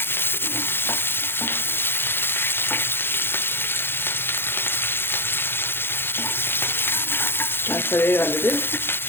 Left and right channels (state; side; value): late; right; 0.10 ms